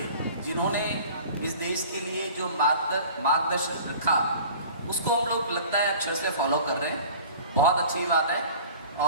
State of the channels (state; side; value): inverted; both; correlation -0.44